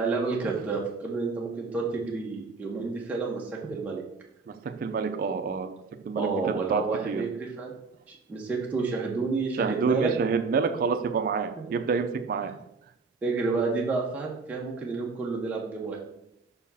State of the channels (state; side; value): quieter; left; 4.3 dB